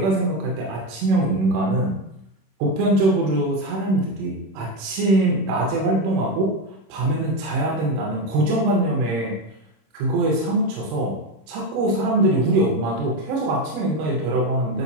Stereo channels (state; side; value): late; left; 26 ms